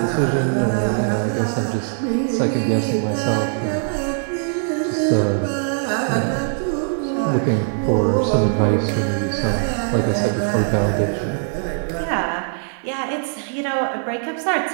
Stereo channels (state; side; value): silent; left; digital silence